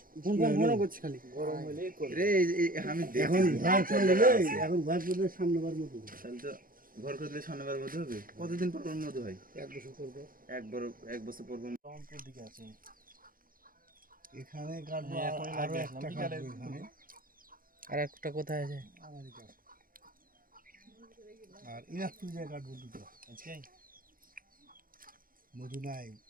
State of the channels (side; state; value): left; late; 0.41 ms